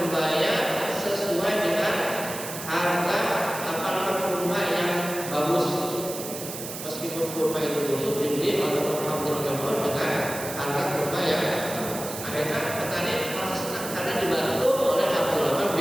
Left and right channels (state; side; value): noise; right; hiss, 9 dB below the sound